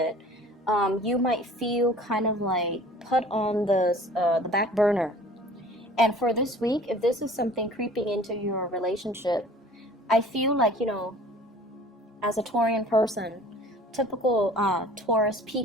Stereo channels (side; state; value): both; normal; correlation 0.47